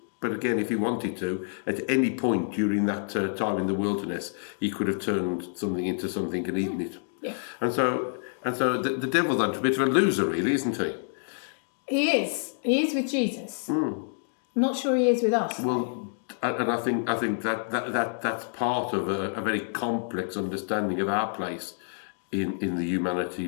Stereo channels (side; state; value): right; silent; digital silence